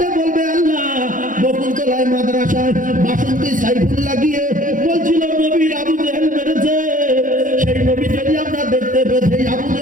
বলবে আল্লাহ, বকুলতলায় মাদ্রাসায় বাসন্তী সাইফুল্লাহ গিয়ে বলছিল নবীর আবু জাহেল মেরেছে, সেই নবী যদি আমরা দেখতে পেতে, আবু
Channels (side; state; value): left; late; 0.38 ms